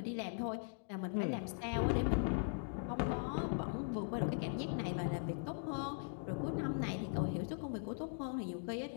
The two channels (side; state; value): right; silent; digital silence